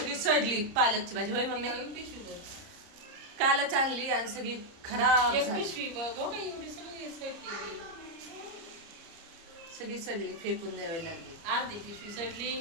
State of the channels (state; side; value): late; left; 30 ms